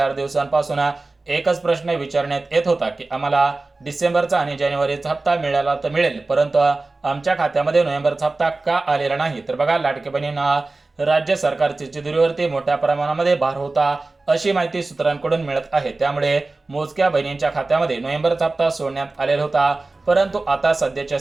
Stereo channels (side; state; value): left; quieter; 3.3 dB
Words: दिवसांपासून एकच प्रश्न विचारण्यात येत होता की आम्हाला डिसेंबरचा आणि जानेवारीचा हप्ता मिळाला तर मिळेल, परंतु आमच्या खात्यामध्ये नोव्हेंबरचा हप्ता का आलेला नाही. तर बघा लाडक्या बहिणींना, राज्य सरकारच्या तिजोरीवरती मोठ्या प्रमाणामध्ये भार होता अशी माहिती सूत्रांकडून मिळत आहे. त्यामुळे मोजक्या बहिणींच्या खात्यामध्ये नोव्हेंबरचा हप्ता सोडण्यात आलेला होता. परंतु आता सध्याच्या